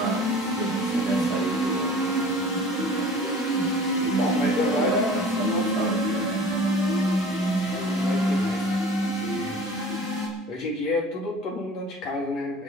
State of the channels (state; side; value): normal; both; correlation 0.43